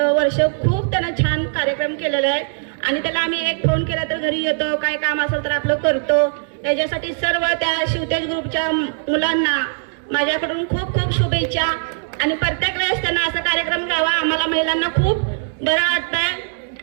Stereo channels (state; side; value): silent; left; 66 dB below the other